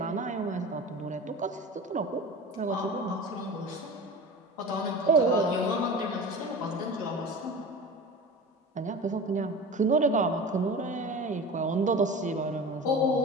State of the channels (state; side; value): normal; both; correlation 0.33